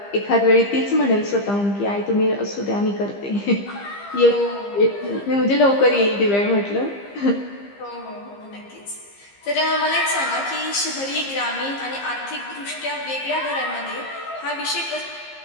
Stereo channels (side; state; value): right; late; 15 ms